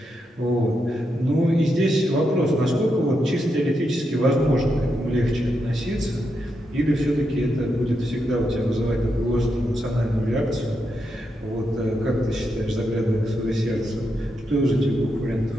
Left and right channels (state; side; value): normal; both; correlation 0.83